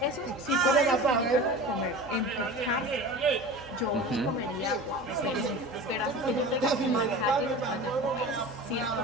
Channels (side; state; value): both; normal; correlation 0.35